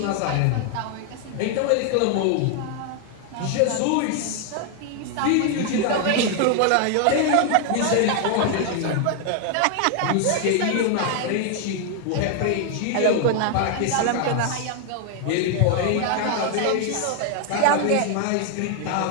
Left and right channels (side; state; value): both; different; correlation 0.00